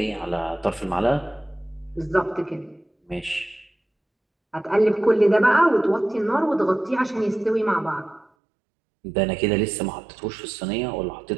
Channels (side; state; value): left; drops out; at 8.2 s